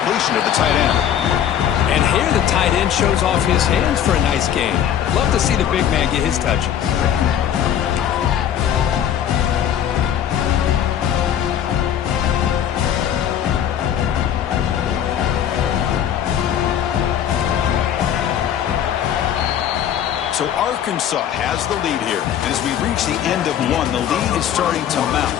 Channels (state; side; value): quieter; right; 9.8 dB